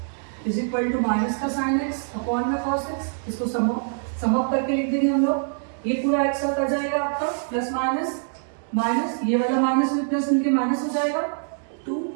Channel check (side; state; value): left; silent; digital silence